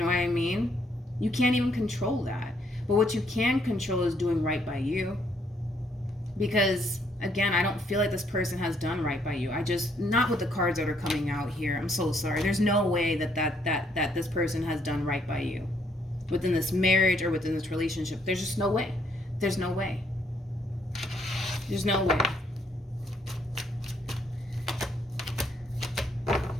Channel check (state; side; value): normal; both; correlation 0.70